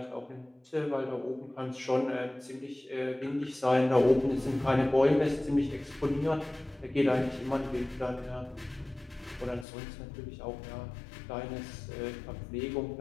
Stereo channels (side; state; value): right; drops out; at 9.7 s